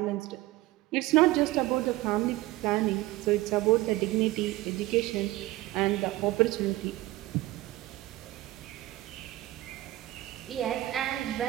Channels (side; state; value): left; quieter; 17.6 dB